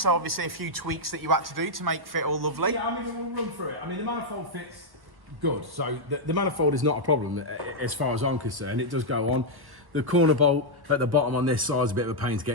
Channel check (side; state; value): left; late; 1.4 ms